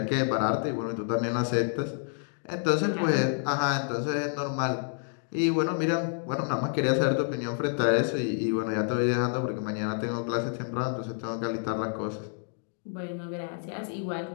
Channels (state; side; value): silent; right; 59 dB below the other